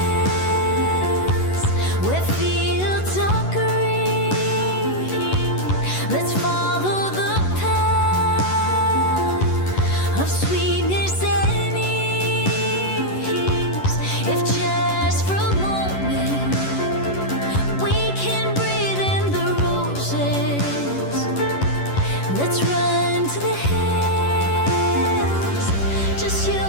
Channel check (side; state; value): right; late; 11 ms